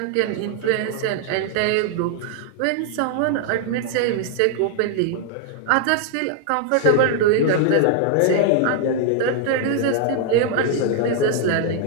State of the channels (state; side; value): different; both; correlation 0.00